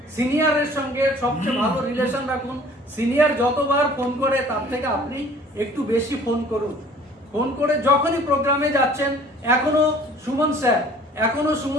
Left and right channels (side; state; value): both; normal; correlation 0.51